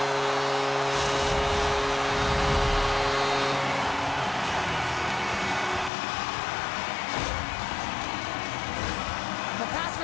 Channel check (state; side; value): drops out; right; at 5.9 s